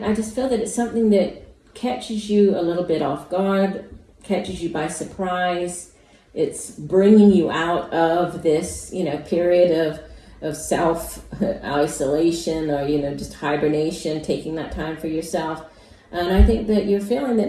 just feel that it's something that catches you a little bit off guard, catches you by surprise. It's bringing you out of this, period of self isolation, or just hibernation, taking that time for yourself. And I think that you're feeling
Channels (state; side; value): identical; both; correlation 1.00